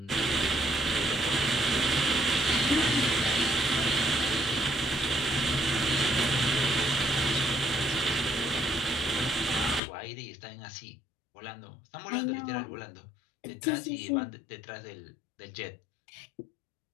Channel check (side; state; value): right; drops out; at 9.8 s